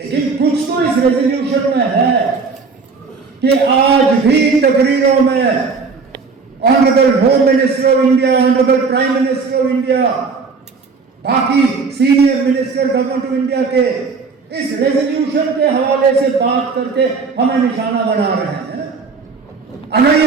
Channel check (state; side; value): quieter; left; 4.7 dB